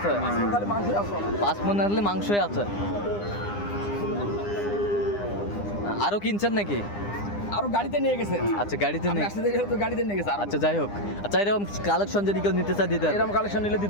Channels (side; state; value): right; late; 9.9 ms